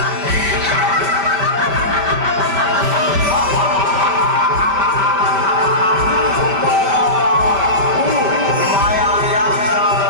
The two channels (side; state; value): left; late; 5.1 ms